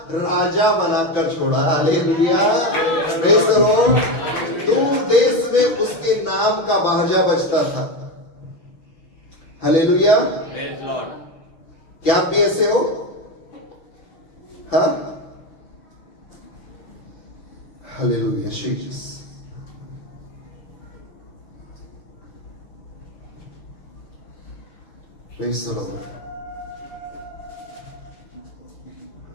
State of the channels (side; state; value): right; late; 5.9 ms